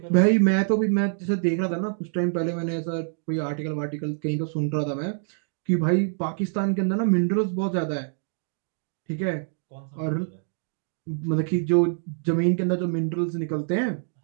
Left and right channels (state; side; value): silent; left; digital silence